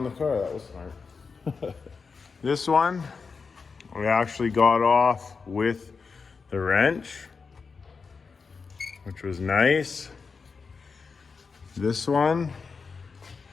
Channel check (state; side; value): quieter; right; 5.0 dB